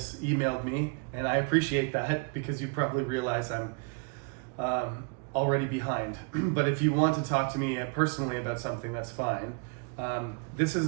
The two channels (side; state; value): left; quieter; 35.0 dB